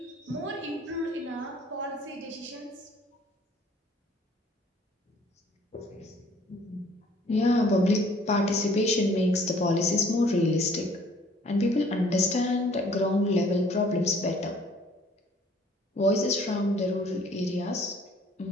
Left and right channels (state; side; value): normal; both; correlation 0.57